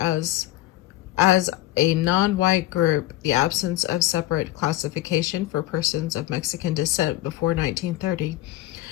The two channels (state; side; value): quieter; right; 15.6 dB